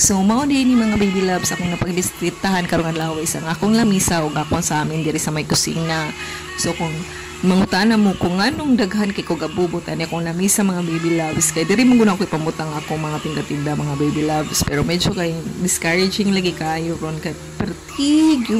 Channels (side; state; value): both; identical; correlation 1.00